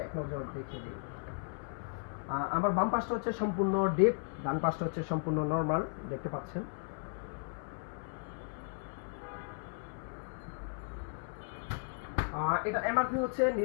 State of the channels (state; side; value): silent; right; 54 dB below the other